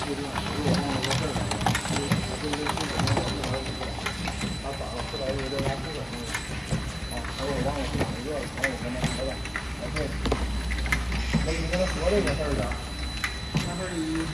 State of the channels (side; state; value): both; identical; correlation 1.00